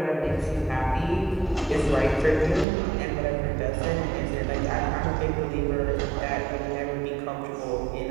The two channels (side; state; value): left; drops out; at 2.7 s